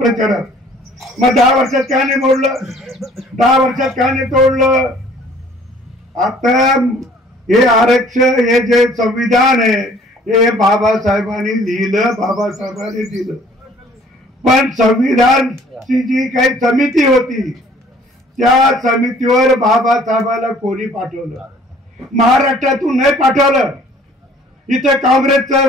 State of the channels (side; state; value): both; normal; correlation 0.55